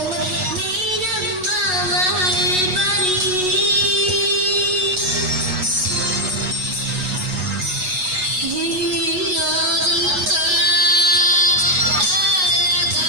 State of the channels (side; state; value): left; late; 8.2 ms